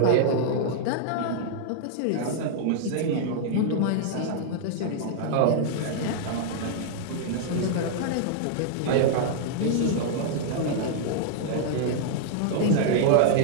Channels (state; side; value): different; both; correlation -0.01